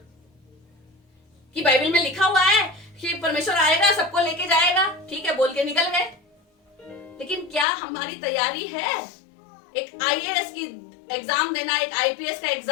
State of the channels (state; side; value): drops out; right; at 7.7 s